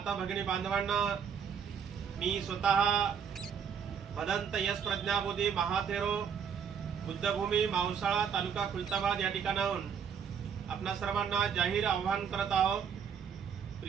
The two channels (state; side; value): quieter; left; 7.2 dB